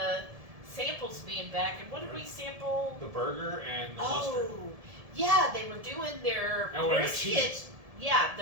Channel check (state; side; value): late; left; 1.7 ms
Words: samples being back. And what did we sample? The burger and the mustard. Oh, yeah, they were doing their And with the brisket. cheese. Yeah,